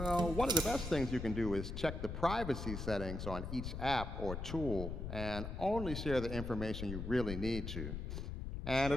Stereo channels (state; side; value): noise; left; rumble, 5 dB below the sound